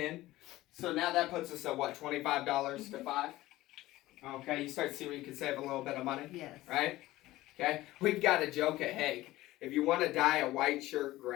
So now that puts us at what? $25 to $5? Okay, you start to see where you can save a little bit of money? Yes. Right? Okay, we've got a joke at Hague. If you want to dye a white shirt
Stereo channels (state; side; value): quieter; right; 17.0 dB